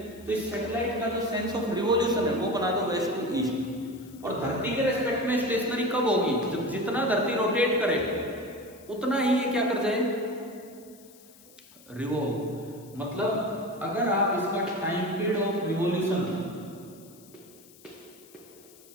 तो इस सैटेलाइट का जो सेंस ऑफ रिवॉल्यूशन है वो बना दो वेस्ट टू ईस्ट। और धरती के रेस्पेक्ट में स्टेशनरी कब होगी, जब जितना धरती रोटेट करे उतना ही ये क्या कर जाए, रिवॉल्व। मतलब अगर आप इसका टाइम पीरियड ऑफ रिवॉल्यूशन,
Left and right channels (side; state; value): left; noise; hiss, 24 dB below the sound